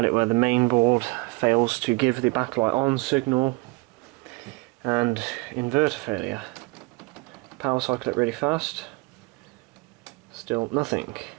it where the main board fails to give the backlight on signal, and inverter failure. Power cycle it really fast, still nothing.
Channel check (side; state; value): left; quieter; 26.3 dB